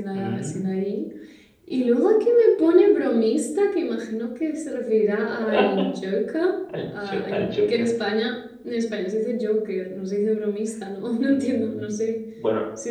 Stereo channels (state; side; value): identical; both; correlation 1.00